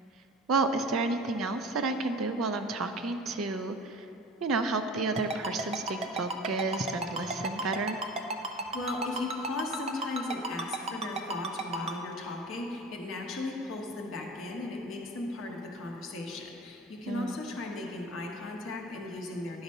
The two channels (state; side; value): normal; both; correlation 0.38